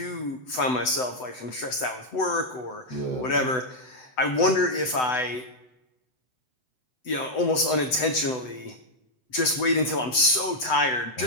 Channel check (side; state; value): right; late; 7.9 ms